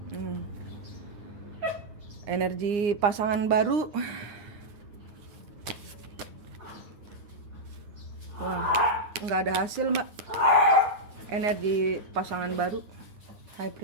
Energi pasangan baru. Wah, nggak ada hasil Mbak. Energi pasangan baru. High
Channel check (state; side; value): late; left; 9.7 ms